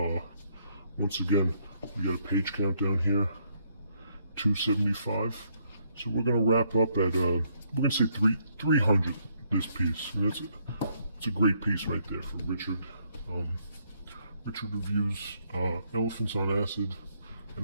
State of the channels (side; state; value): both; inverted; correlation -0.72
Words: Once again, we got a page count down here, 275. So we're gonna wrap up at we're gonna say 300 this piece. And it's a great piece right there for Richard. Richard reviews Elephants on Acid